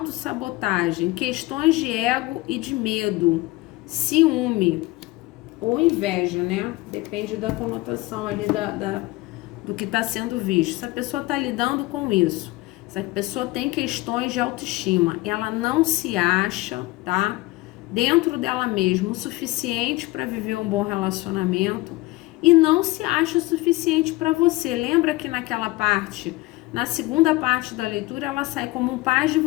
questões de ego e de medo, ciúme ou inveja, né? Depende da conotação ali do que está sendo visto. Essa pessoa está lidando com isso. Essa pessoa tem questões de autoestima. Ela não se acha, tá? Dentro dela mesma o suficiente para viver um bom relacionamento e não se acha o suficiente para você. Lembra que naquela parte, na segunda parte da leitura, ela sai como um pajem e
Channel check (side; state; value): right; quieter; 20.4 dB